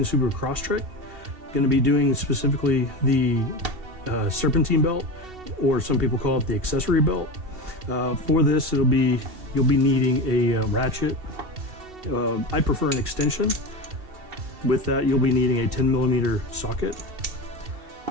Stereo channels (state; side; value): late; left; 2.7 ms